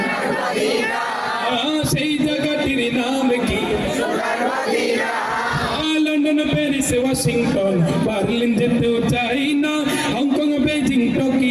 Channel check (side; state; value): both; identical; correlation 1.00